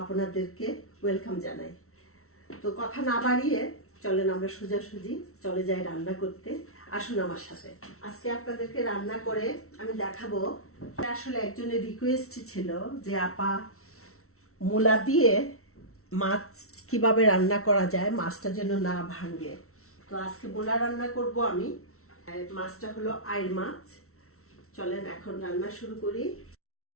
আপনাদেরকে ওয়েলকাম জানাই। তো কথা না বাড়িয়ে চলেন আমরা সোজাসুজি চলে যাই রান্না করতে। আসুন আমার সাথে। আজকে আপনাদেরকে রান্না করে আমি দেখাবো। আসলে একজনের রিকোয়েস্ট ছিল যে আপা মূলা দিয়ে মাছ কিভাবে রান্না করা যায়, মাছটা যেন না ভাঙে। তো আজকে মূলা রান্না করব আমি। মাছটা হলো আইড় মাছ। চলেন এখন রান্না শুরু করি।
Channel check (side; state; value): right; late; 0.63 ms